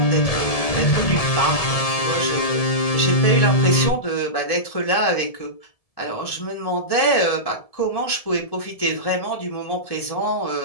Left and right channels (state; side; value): late; right; 1.7 ms